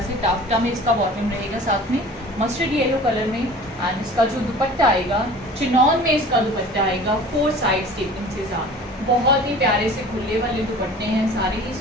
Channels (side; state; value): both; normal; correlation 0.43